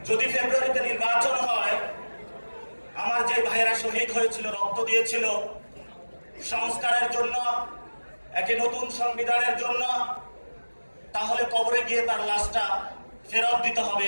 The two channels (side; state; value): both; inverted; correlation -1.00